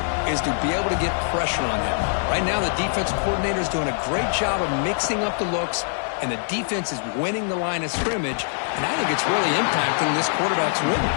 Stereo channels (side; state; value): right; silent; digital silence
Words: is to be able to get pressure on him. Right now, the defense coordinator is doing a great job of mixing up the looks, and the defense is winning the line of scrimmage, and I think it's really impacting this quarterback's rhythm.